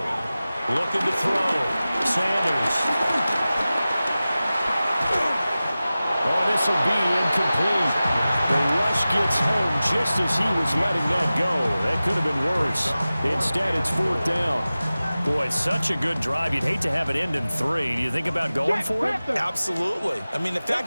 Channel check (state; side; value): inverted; both; correlation -0.96